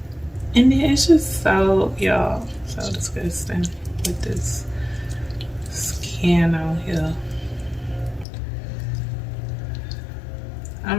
And then it's just so, y'all, so disgusting with this skin on here.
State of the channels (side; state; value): right; drops out; at 8.2 s